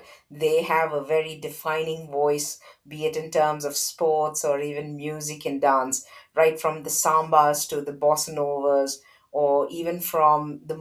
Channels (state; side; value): identical; both; correlation 1.00